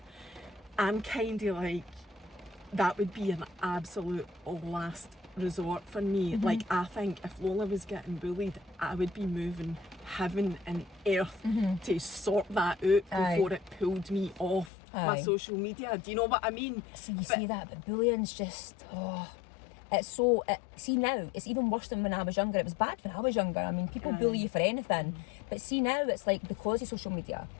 I'm kind of like, that would be an absolute last resort for me. Like, I think if Lola was getting bullied, I would be moving heaven and earth to sort that out before it pulled me off my social media. Do you know what I mean? So you see that, but bullying's just, it's so, see now, it's even worse than when I was younger. It was bad when I was younger. I mean, people bully you for anything. But see now, it's like, because of social media,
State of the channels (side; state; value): right; drops out; at 14.7 s